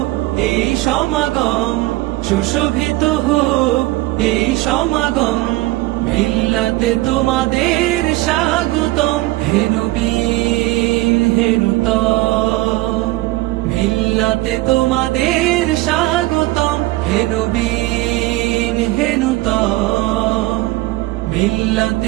এই সমাগম, সুশোভিত হোক এই সমাগম, মিল্লাতে তোমাদের স্বাগতম। হে নবী হে নূতন, মিল্লাতে তোমাদের স্বাগতম। হে নবী হে নূতন,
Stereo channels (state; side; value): quieter; left; 19.1 dB